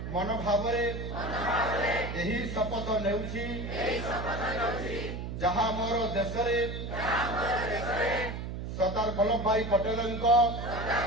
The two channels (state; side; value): noise; right; hum, 6 dB below the sound